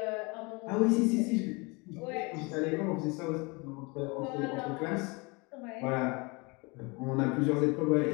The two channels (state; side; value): quieter; right; 28.2 dB